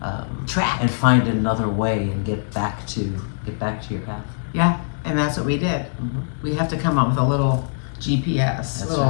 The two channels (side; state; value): right; silent; 63 dB below the other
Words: track and find another way and get back to your path. Yeah, and that's what we did. We have to come up with a little GPS, That's